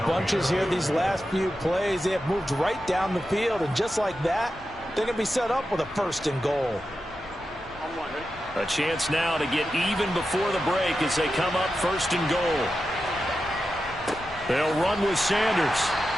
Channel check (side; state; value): both; normal; correlation 0.90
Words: bunches here these last few plays. They have moved right down the field, and just like that, they're going to be set up with a 1st and goal. A chance now to get even before the break as they come up 1st and goal. They'll run with Sanders.